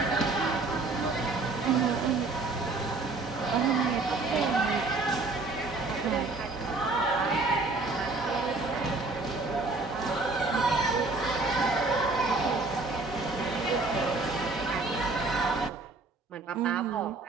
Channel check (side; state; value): left; quieter; 3.6 dB